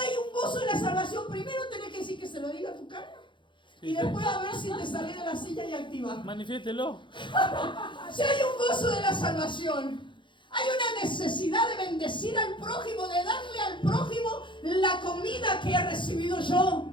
hay un gozo de la salvación. Primero tenés que decir que se lo diga a tu cara y después a ver si te salís de la silla y activas. Manifiéstelo. Si hay un gozo de la salvación, hay una necesidad de bendecir al prójimo, de darle al prójimo la comida que he recibido yo.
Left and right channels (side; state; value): right; late; 0.23 ms